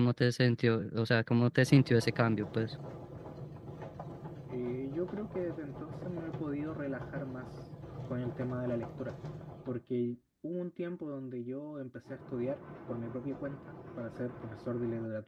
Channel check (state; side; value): identical; both; correlation 1.00